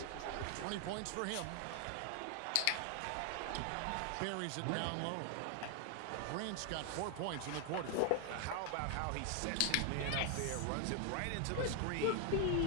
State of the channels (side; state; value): both; different; correlation 0.00